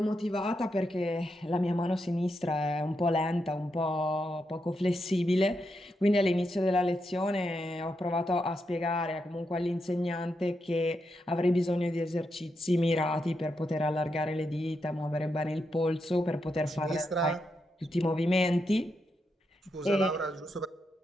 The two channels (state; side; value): normal; both; correlation 0.84